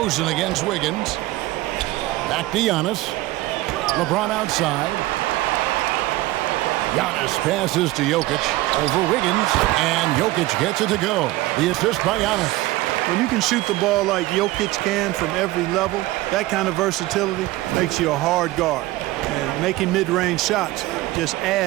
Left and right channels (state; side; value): quieter; left; 18.1 dB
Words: against Wiggins. Back to Giannis. LeBron outside. Giannis passes to Jokic over Wiggins, and Jokic gets it to go. The assist by Giannis. When you can shoot the ball like Jokic can from every level, that kind of versatility makes you a hard guard. And making mid-range shots just